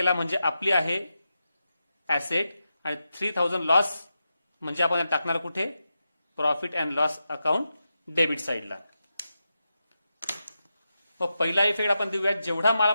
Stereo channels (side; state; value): both; inverted; correlation -0.89